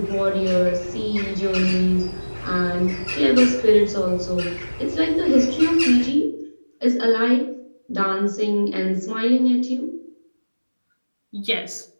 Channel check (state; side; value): inverted; both; correlation -1.00